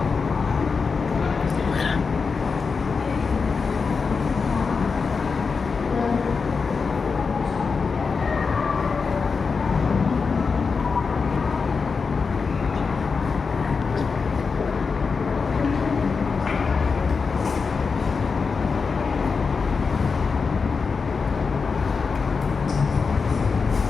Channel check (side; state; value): right; quieter; 5.0 dB